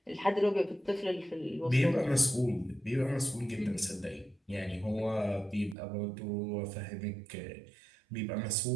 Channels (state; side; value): drops out; left; at 5.8 s